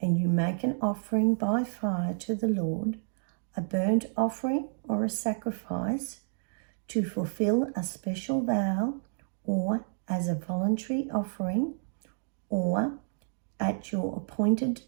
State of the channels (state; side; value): silent; left; digital silence